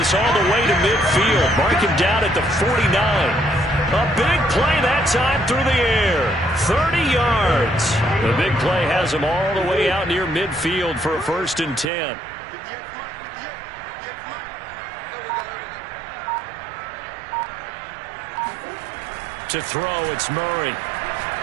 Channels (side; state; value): left; drops out; at 11.9 s